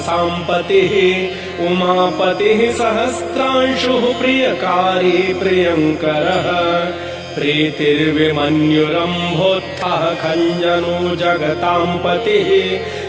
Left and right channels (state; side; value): identical; both; correlation 1.00